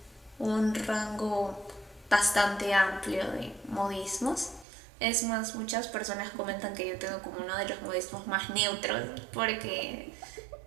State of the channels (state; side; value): drops out; left; at 4.7 s